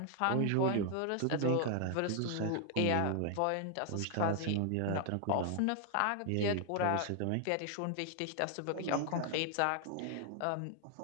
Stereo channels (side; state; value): both; different; correlation 0.00